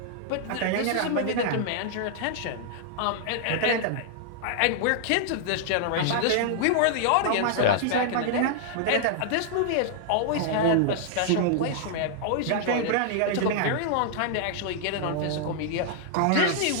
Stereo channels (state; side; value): different; both; correlation -0.01